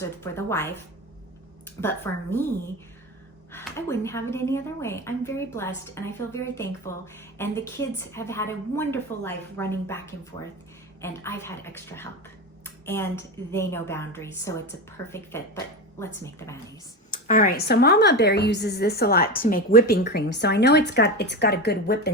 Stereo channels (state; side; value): normal; both; correlation 0.21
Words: or for the wife. But for me, I wouldn't have it any other way. I'm very blessed and I feel very thankful. And the kids have had a wonderful life running back and forth, and I've had extra help. And they know boundaries, so it's a perfect fit. But let's make the mayonnaise. All right, so Mama Bear uses this a lot to make whipping cream. So I know it's got a good